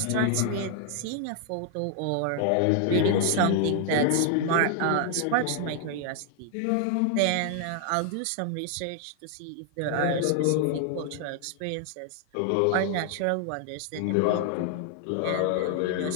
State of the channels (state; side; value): different; both; correlation 0.00